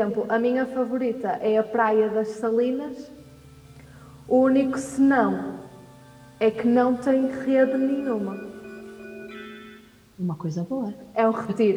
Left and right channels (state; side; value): identical; both; correlation 1.00